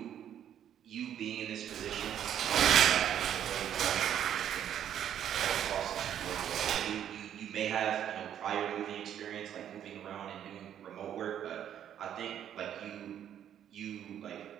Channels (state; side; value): quieter; left; 10.0 dB